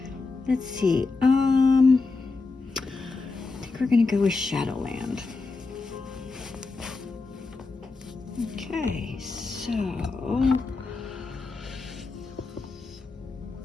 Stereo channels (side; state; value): right; quieter; 3.9 dB